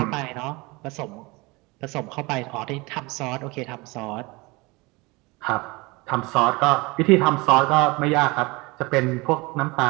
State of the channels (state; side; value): quieter; left; 24.6 dB